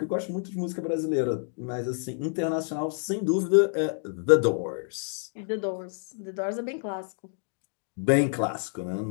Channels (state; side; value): silent; right; 59 dB below the other